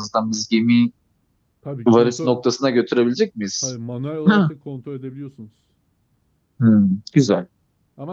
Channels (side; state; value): both; identical; correlation 1.00